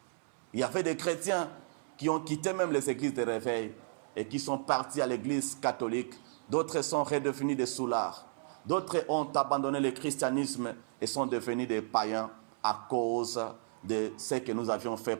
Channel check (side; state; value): left; silent; 55 dB below the other